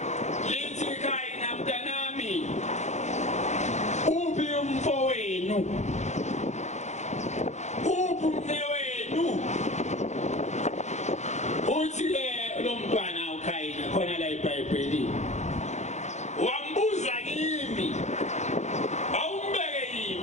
lithi Khayini mntanami uphi umfowenu uphi umnewenu uthi lo mntwana uKhayini khona la eBhayibhelini wambuza kimi awumbeke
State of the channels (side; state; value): right; late; 0.33 ms